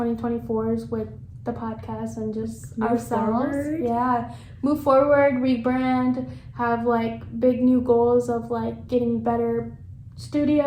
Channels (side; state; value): both; identical; correlation 1.00